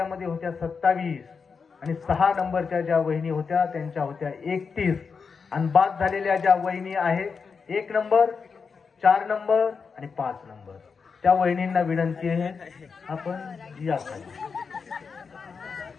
होत्या 27 आणि 6 नंबरच्या ज्या वहिनी होत्या त्यांच्या होत्या 31. आणि बाद झालेल्या ज्या वहिनी आहेत 1 नंबर, 4 नंबर आणि 5 नंबर, त्या वहिनींना विनंती आहे आपण या खाली.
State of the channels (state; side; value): quieter; right; 5.4 dB